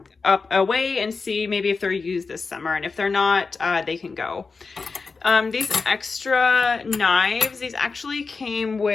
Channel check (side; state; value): right; quieter; 4.4 dB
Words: away and see maybe if they're used this summer, and if they're not, they can go. These extra knives, these actually came